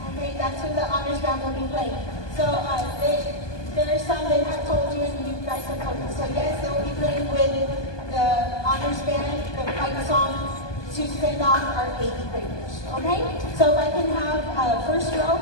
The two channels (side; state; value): right; late; 1.2 ms